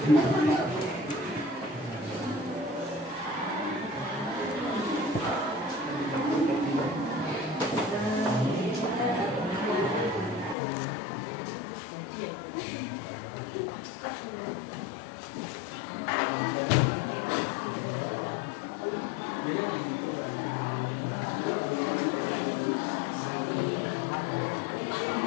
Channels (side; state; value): right; drops out; at 10.6 s